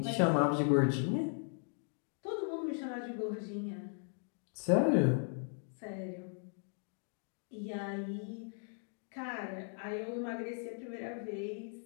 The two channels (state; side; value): silent; right; 53 dB below the other